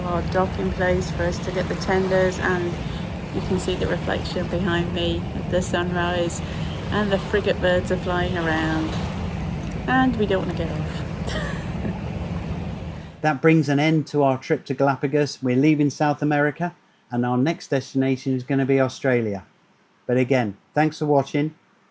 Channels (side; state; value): both; identical; correlation 1.00